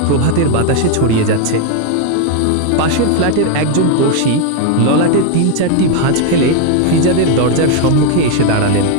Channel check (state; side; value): different; both; correlation 0.01